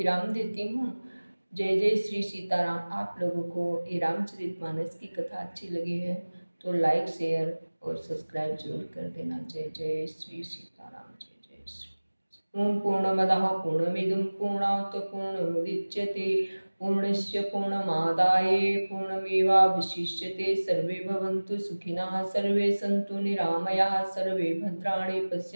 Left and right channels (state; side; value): inverted; both; correlation -1.00